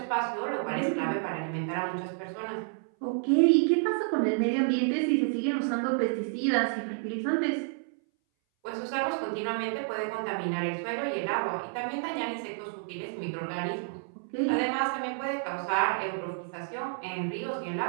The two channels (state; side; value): silent; left; 58 dB below the other